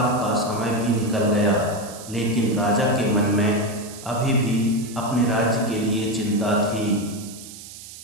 का समय भी निकल गया, लेकिन राजा के मन में अभी भी अपने राज्य के लिए चिंता थी।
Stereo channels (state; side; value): noise; right; hiss, 15 dB below the sound